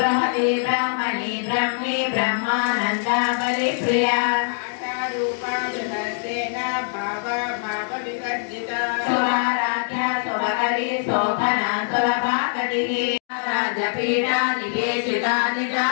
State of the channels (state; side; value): silent; right; digital silence